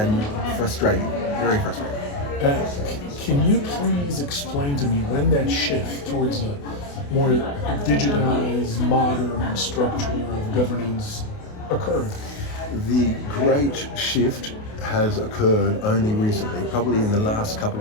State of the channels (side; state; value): right; late; 28 ms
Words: frustrating, very frustrating. Uh, can you please explain to me when that shift towards a more digitized, modern structure of governance occurred? The great shift has occurred only recently, probably in the last couple